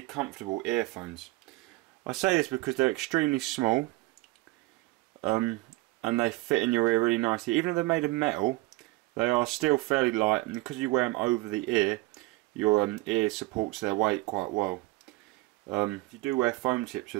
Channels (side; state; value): left; quieter; 21.1 dB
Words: comfortable earphones. I say this because they're extremely small, and they fit in your ear really nicely. Even though they're made of metal, they are still fairly light, and because you wear them over the ear, your ear supports their weight quite well. If you do wear foam tips